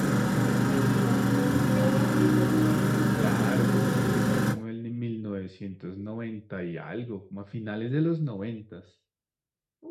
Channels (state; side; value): identical; both; correlation 1.00